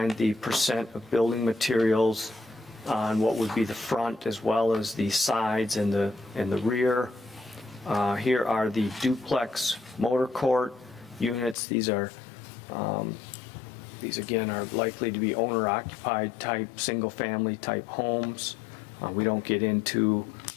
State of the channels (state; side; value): drops out; right; at 11.6 s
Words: the percent of building materials on what would be the front as well as the sides and the rear. Here are the duplex motor court units. These again are likely to be owner-occupied type, single-family type homes. We don't get into